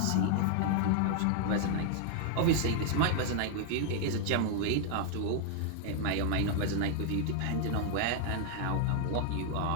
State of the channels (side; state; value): both; different; correlation 0.00